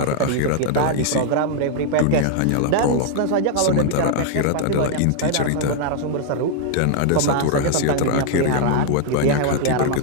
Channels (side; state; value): both; different; correlation 0.00